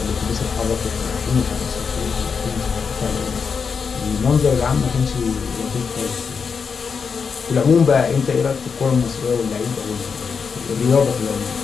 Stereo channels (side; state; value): right; quieter; 5.8 dB